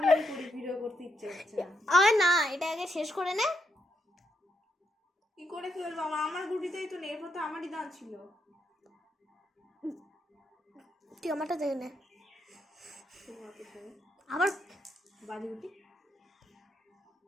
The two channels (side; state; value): both; normal; correlation 0.80